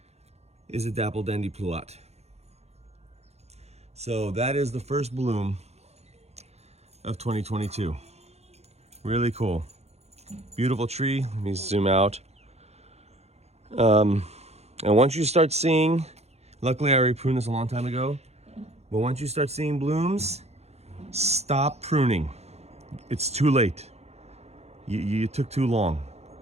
is a Dapple Dandy Pluot. So that is the first bloom of 2022. Really cool. Beautiful tree. Let me zoom out. And once you start seeing, luckily I already pruned this a long time ago, but once you start seeing blooms, stop pruning. It's too late. You took too long.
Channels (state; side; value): late; left; 0.31 ms